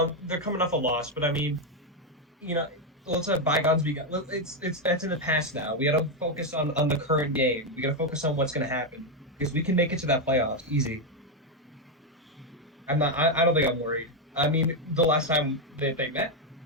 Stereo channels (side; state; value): both; normal; correlation 0.04